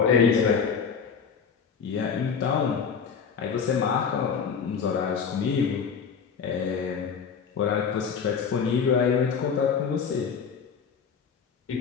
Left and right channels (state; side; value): quieter; right; 6.4 dB